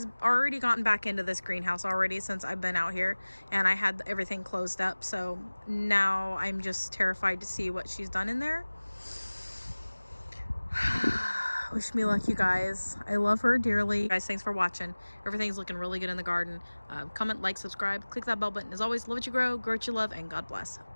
already gotten back into this greenhouse already since I've been out here, and I had everything closed up. So now I'm just terrified to see what she's done in there. Wish me luck, you guys. I love her dearly. Guys, thanks for watching. Everything's looking really good in the garden. Comment, like, subscribe, click that bell button. As always, love what you grow what you love, and God bless.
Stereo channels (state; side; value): inverted; both; correlation -1.00